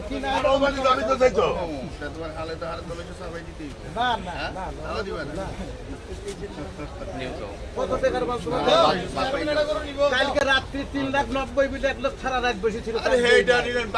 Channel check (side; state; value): both; identical; correlation 1.00